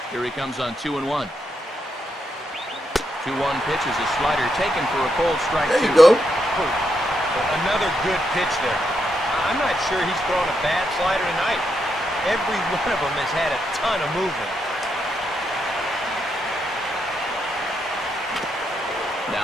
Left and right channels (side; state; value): both; normal; correlation 0.81